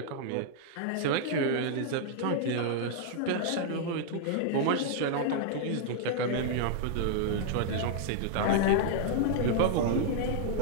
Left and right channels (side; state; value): both; different; correlation -0.01